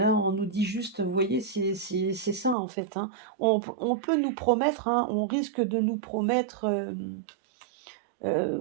on nous dit juste, vous voyez, c'est ça en fait, hein. On peut nous promettre, hein, on risque de nous promettre,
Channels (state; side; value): drops out; left; at 2.6 s